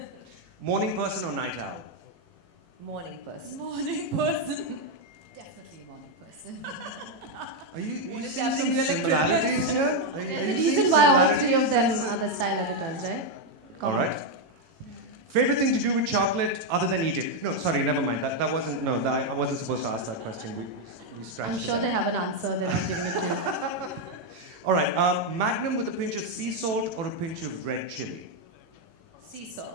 Morning person or night owl? Morning person. Morning person. Definitely a morning person. Are you What is seeing some happening? You're like similarities here? Are you There's a seeing reason why all three of them similarities? are the style editors, right? All right. Favorite thing to do with chocolate other than eat it? No, sorry, never mind. That wasn't, no, I wasn't supposed to ask that question. We scratched I'm it sure out. they have an answer, they're not giving it to you. All right, Magnum with a pinch of sea salt or a pinch of red chili? Sea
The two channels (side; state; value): left; late; 18 ms